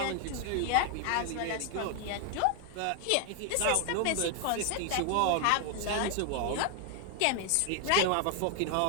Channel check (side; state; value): both; different; correlation 0.00